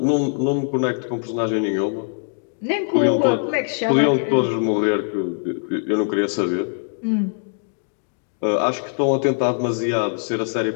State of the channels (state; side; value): silent; right; digital silence